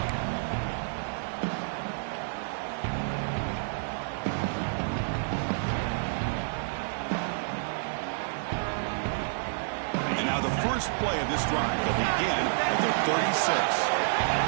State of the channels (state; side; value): silent; left; digital silence